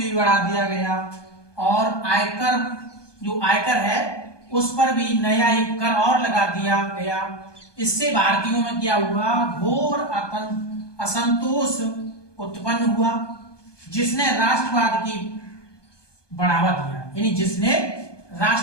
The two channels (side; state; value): right; late; 1.2 ms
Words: बढ़ा दिया गया, और आयकर जो आयकर है उस पर भी नया एक कर और लगा दिया गया। इससे भारतीयों में क्या हुआ? घोर असंतोष उत्पन्न हुआ, जिसने राष्ट्रवाद की बढ़ावा दिया, यानी जिसने